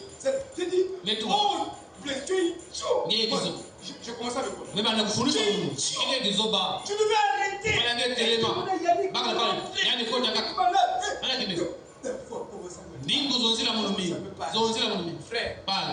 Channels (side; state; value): both; identical; correlation 1.00